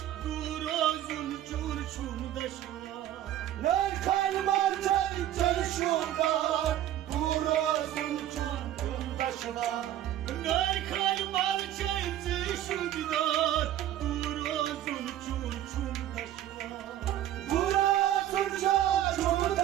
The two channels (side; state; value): left; quieter; 12.4 dB